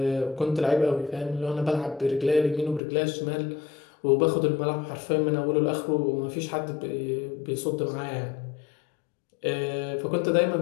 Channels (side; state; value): right; drops out; at 2.8 s